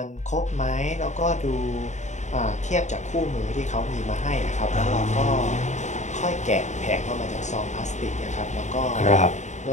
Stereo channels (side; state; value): right; late; 0.34 ms